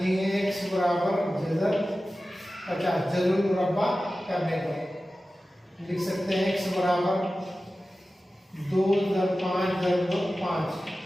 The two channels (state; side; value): normal; both; correlation 0.95